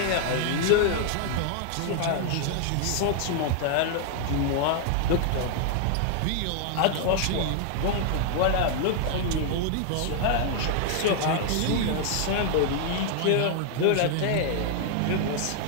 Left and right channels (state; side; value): different; both; correlation 0.00